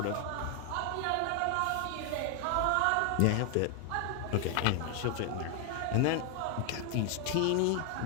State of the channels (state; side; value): different; both; correlation 0.00